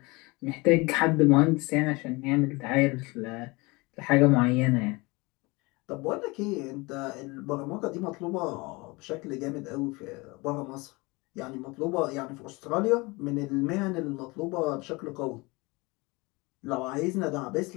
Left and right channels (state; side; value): quieter; right; 24.9 dB